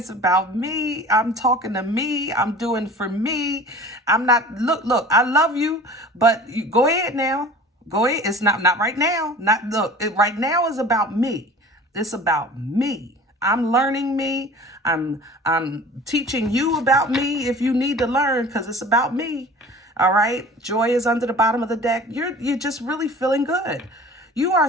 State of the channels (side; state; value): both; normal; correlation 0.42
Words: about me. I'm talking to me. I'm doing for me. I'm not, look, I love you, but you go ahead now. Go ahead. It's not right now. Right now is about me. It's about me. I'm learning me. I'm teaching you about me if you need to learn, because it's about me. All right. Joy is under the bottom of the deck. You're just really feeling good. You